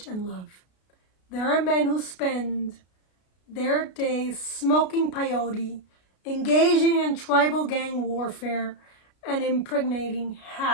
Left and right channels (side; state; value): right; late; 33 ms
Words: and love. There are men who spend their days smoking peyote, engaging in tribal gang warfare, and impregnating